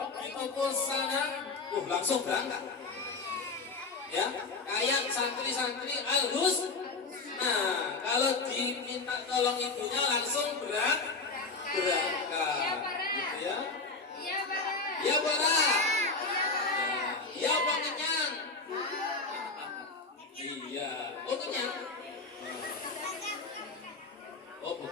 di toko sana, langsung berangkat. Ya, kayak santri-santri Al-Hus. Nah, kalau diminta tolong ibunya langsung berangkat. Gitu ya. Ya, Bara. Ya, Pak kenyang. Iya, oh kenyang. Oh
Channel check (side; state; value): right; quieter; 4.0 dB